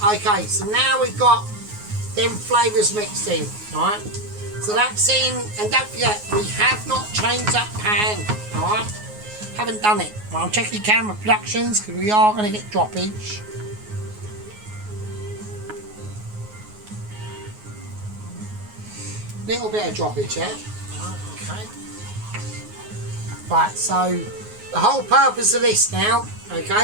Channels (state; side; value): late; left; 9.5 ms